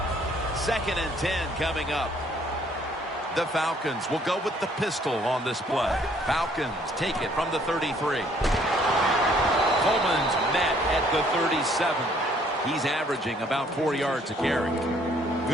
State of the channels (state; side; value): normal; both; correlation 0.63